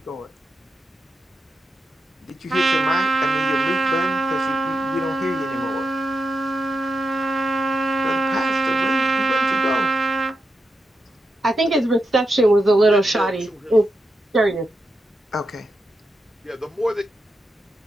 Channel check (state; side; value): normal; both; correlation 0.86